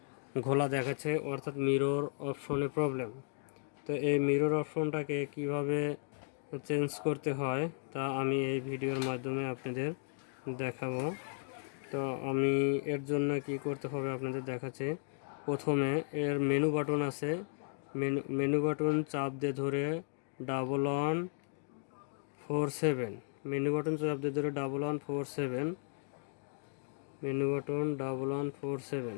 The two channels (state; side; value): silent; right; 54 dB below the other